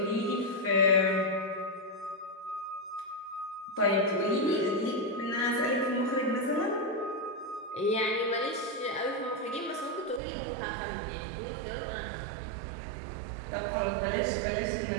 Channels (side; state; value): left; drops out; at 10.2 s